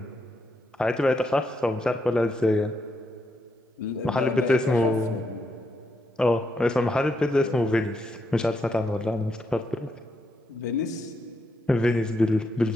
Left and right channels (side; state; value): both; normal; correlation 0.80